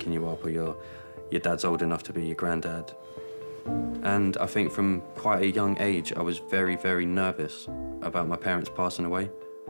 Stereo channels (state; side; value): inverted; both; correlation -1.00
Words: you up, or your dad's old enough to be your granddad. And I think from quite a young age, I was very, very nervous about my parents passing away.